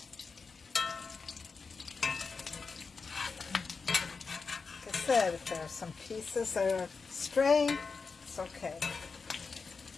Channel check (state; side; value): quieter; right; 4.8 dB